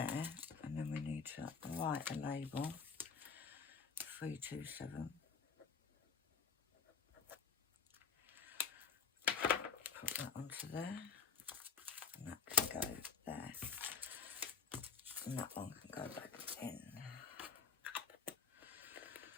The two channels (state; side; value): quieter; right; 5.7 dB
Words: and then we need to write a label. 327. Put that onto there, and that can go there, and that one can go back in.